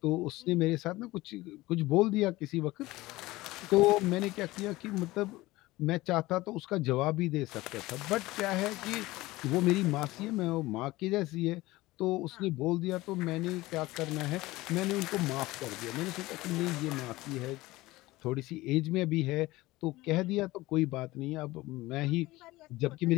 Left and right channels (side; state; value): right; quieter; 19.1 dB